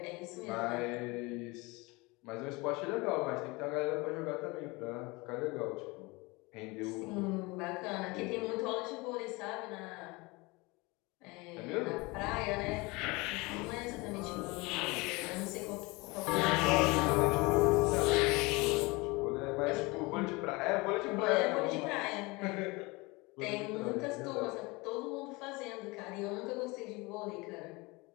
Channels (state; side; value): quieter; right; 24.8 dB